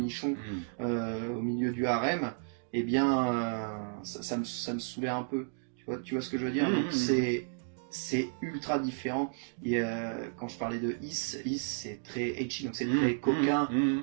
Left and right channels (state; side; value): silent; left; digital silence